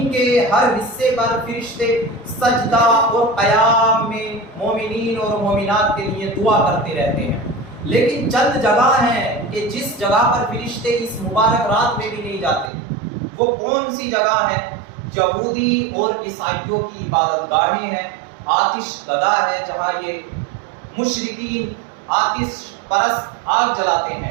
کے ہر حصے پر فرشتے سجدہ اور قیام میں مومنین اور مومنات کے لیے دعا کرتے رہتے ہیں۔ لیکن چند جگہ ہیں کہ جس جگہ پر فرشتے اس مبارک رات میں بھی نہیں جاتے۔ وہ کون سی جگہ ہیں؟ یہودی اور عیسائیوں کی عبادت گاہیں ہیں، آتش گدا ہے جہاں یہ مشرکین آتش پرست آگ جلاتے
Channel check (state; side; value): drops out; left; at 12.7 s